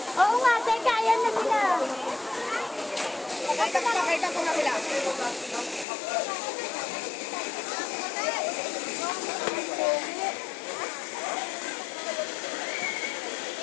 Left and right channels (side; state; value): right; drops out; at 5.9 s